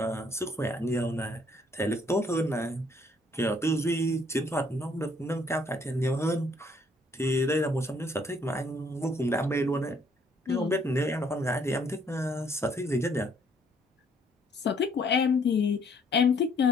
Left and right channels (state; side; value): normal; both; correlation 0.65